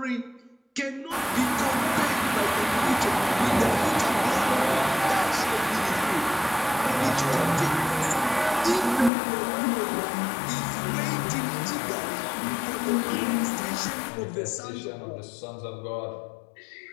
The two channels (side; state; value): right; drops out; at 9.1 s